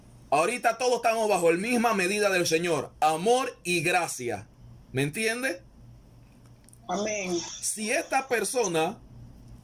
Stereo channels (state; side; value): identical; both; correlation 1.00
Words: Ahorita todos estamos bajo la misma medida del Señor, amor y gracia. ¿Me entiende? Amén. Si esta persona